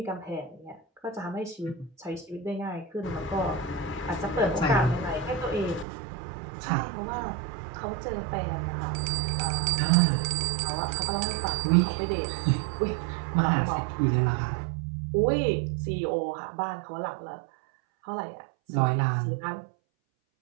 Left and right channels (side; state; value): left; drops out; at 5.9 s